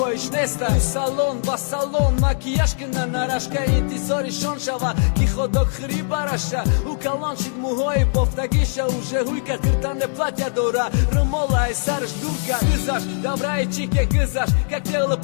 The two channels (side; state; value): right; silent; 62 dB below the other